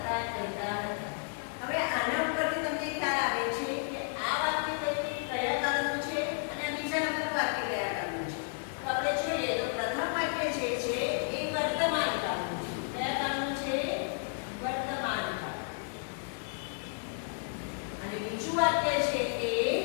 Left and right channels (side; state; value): right; silent; 56 dB below the other